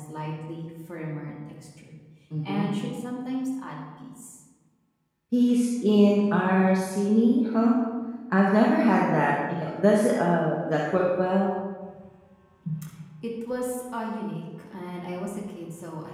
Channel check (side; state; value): both; identical; correlation 1.00